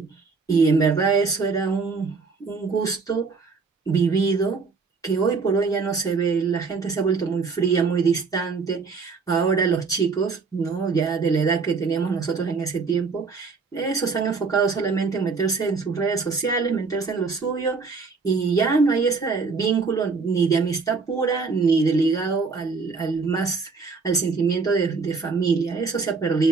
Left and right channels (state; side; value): quieter; left; 4.7 dB